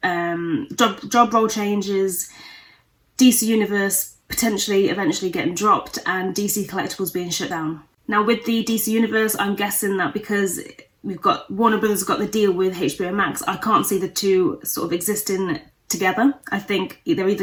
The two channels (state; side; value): identical; both; correlation 1.00